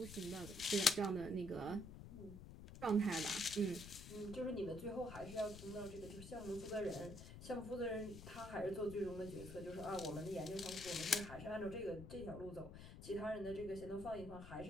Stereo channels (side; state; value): left; noise; rumble, 12 dB below the sound